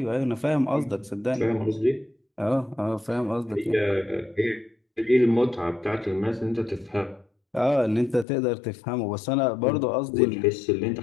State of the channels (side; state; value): right; drops out; at 8.2 s